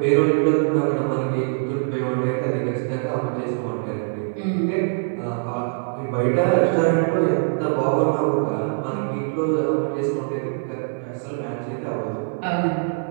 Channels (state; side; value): silent; left; digital silence